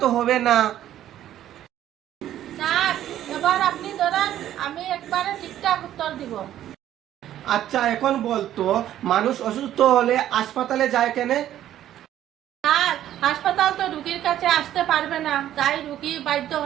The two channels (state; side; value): quieter; left; 12.0 dB